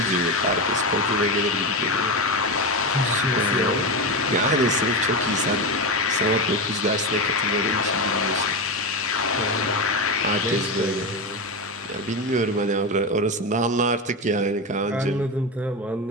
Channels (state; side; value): normal; both; correlation 0.16